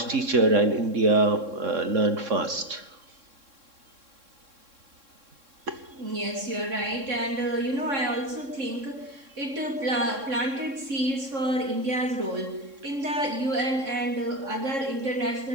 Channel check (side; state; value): left; late; 3.6 ms